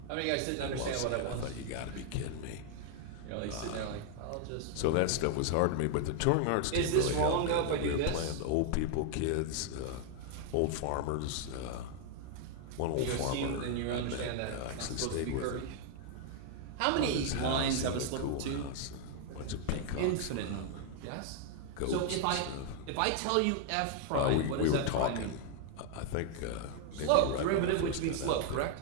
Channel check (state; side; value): different; both; correlation 0.00